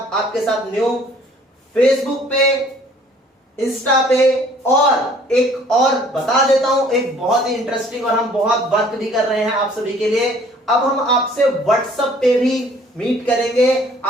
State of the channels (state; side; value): normal; both; correlation 0.56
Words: आपके साथ न्यू फेसबुक पे, इंस्टा पे और एक और बता देता हूं, एक बहुत ही इंटरेस्टिंग और हम बहुत वर्क भी कर रहे हैं आप सभी के लिए। अब हम आपसे व्हाट्सएप पे भी मीट करेंगे।